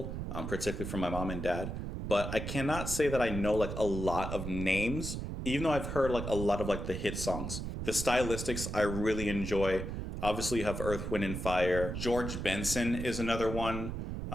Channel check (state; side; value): noise; right; rumble, 5 dB below the sound